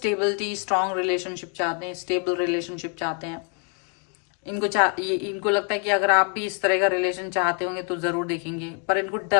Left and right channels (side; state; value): right; quieter; 38.9 dB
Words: स्ट्रॉन्ग रिलेशनशिप चाहते हैं, स्टेबल रिलेशनशिप चाहते हैं। इनको लगता है कि अगर आप भी इस तरह का रिलेशन चाहते होंगे तो जरूर देखेंगे, पर इनको